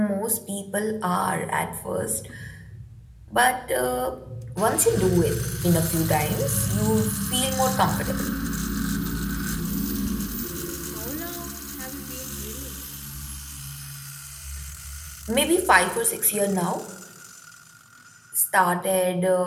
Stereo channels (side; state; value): both; identical; correlation 1.00